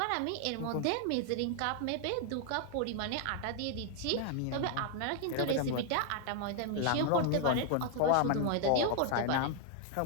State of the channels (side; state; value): both; different; correlation 0.00